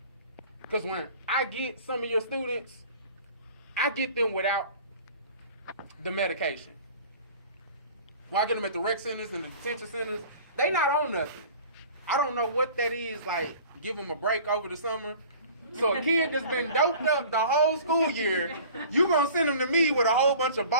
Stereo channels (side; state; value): both; inverted; correlation -0.45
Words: Because when I get some of your students, I get them without the medication. When I get them at the rec centers and the detention centers, they not on nothing. I don't know what that is, like give them a break over the summer. So a kid that's been doped up the whole school year, you gonna send him to me with a whole bunch of